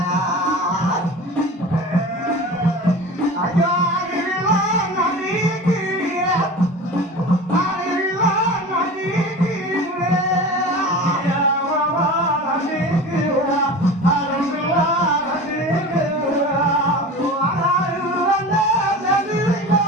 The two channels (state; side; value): normal; both; correlation 0.34